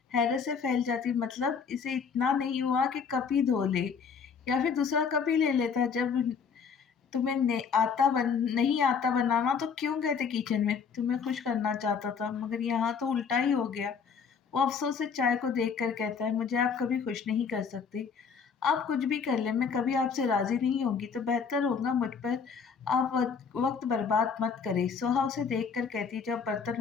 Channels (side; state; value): right; quieter; 6.1 dB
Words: हैरत से फैल जाती। मतलब इसे इतना नहीं हुआ कि कप ही धो ले, या फिर दूसरा कप ही ले लेता? जब तुम्हें नहीं आता बनाना तो क्यों गए थे किचन में? तुम्हें खुश करना चाहता था, मगर यहाँ तो उल्टा ही हो गया। वो अफसोस से चाय को देख कर कहता है, मुझे आप कभी खुश नहीं कर सकते। आप कुछ भी कर लें, मैं कभी आपसे राजी नहीं होंगी। तो बेहतर होगा मुझ पर आप वक्त बर्बाद मत करें। सोहा उसे देख कर कहती है, जब बर्तन